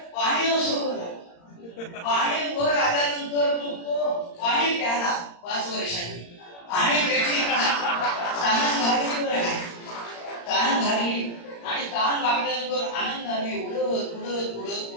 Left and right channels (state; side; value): late; right; 35 ms